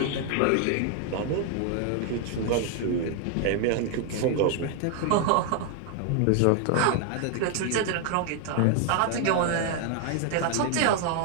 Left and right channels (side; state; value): both; different; correlation 0.00